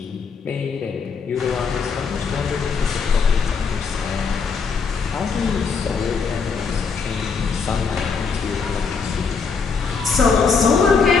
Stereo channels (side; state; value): right; quieter; 5.3 dB